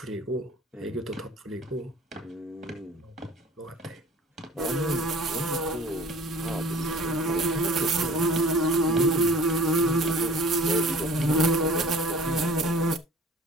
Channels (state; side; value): normal; both; correlation 0.47